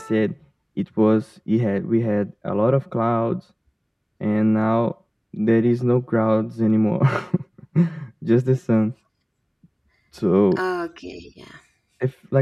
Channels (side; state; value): both; identical; correlation 1.00